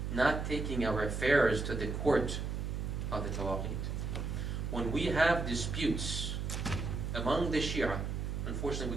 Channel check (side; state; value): right; noise; hum, 3 dB below the sound